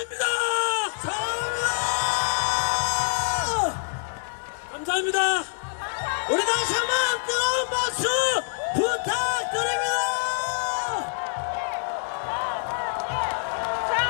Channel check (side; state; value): right; silent; digital silence